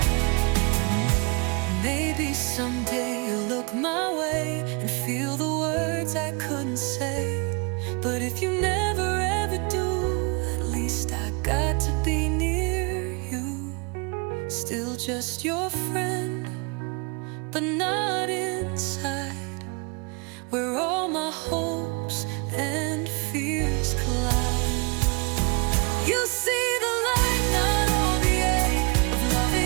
Maybe someday you'll look my way and feel the words I couldn't say. But if you never ever do, at least I got to be near you. Still just your friend, but not inside, where all my hopes and fears collide. You see the light, not all the ache of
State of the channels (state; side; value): quieter; left; 30.6 dB